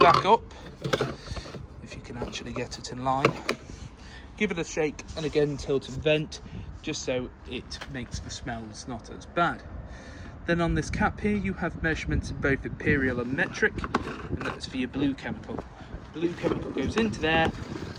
up, if you can actually get it in line. Give it a shake, and again tilt and vent, just so it makes the smells not as bad. Then on this cap here, you have measurements in both imperial and metric, and that's for your blue chemical. Blue chemical goes into there,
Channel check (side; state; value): both; identical; correlation 1.00